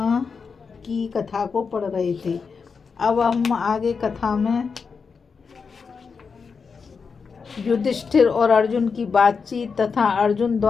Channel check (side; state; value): right; quieter; 5.4 dB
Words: की कथा को पढ़ रहे थे। अब हम आगे कथा में युधिष्ठिर और अर्जुन की बातचीत तथा अर्जुन